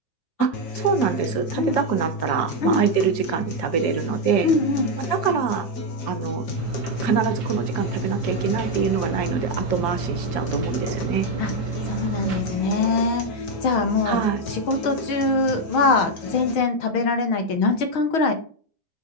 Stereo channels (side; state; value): right; late; 6.3 ms